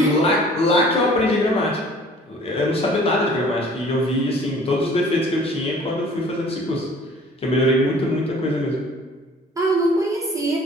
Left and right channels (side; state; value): both; normal; correlation 0.51